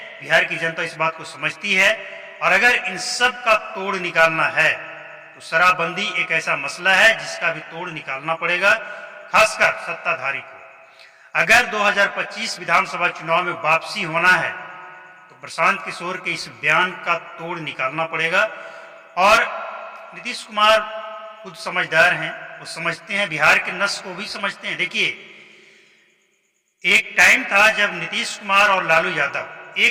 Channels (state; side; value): identical; both; correlation 1.00